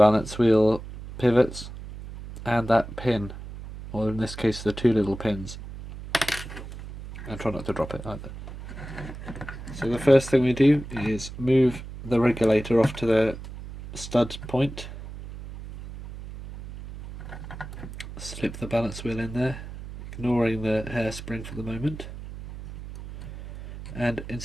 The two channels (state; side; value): noise; right; hum, 12 dB below the sound